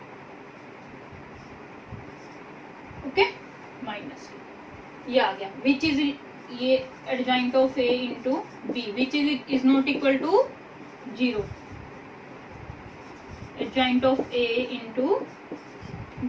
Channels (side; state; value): both; identical; correlation 1.00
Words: ओके माइनस, ये आ गया, विच इज, ये adjoint of A into B, which is not equal to 0, adjoint of A into